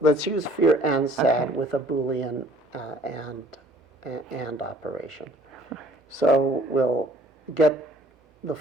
Let's use fear and sad with a Boolean and operation. So we'll get the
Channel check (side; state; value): both; normal; correlation 0.55